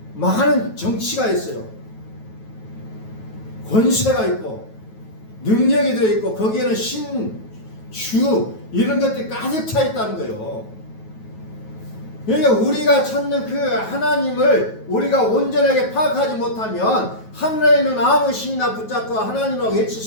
많은 정치가 있어요. 권세가 있고 능력이 들어있고 거기에는 신, 주 이런 것들이 가득 차 있다는 거예요. 그러니까 우리가 찾는 그 하나님을 우리가 온전하게 파악하지 못하면 하늘에 있는 아무 신이나 붙잡고 하나님이라고 외칠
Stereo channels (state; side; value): late; right; 9.2 ms